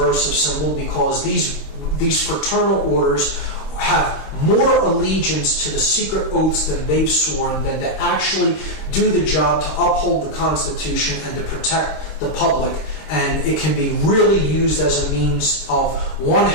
symbol, because these fraternal orders have more allegiance to the secret oaths than they've sworn than to actually do the job to uphold the Constitution and to protect the public. And it can be really used as a means of one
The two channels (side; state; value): right; late; 26 ms